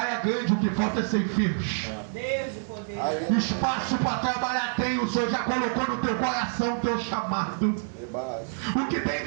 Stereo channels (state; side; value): silent; left; digital silence